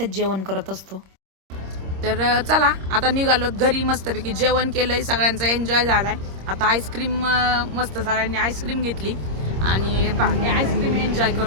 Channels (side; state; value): left; late; 26 ms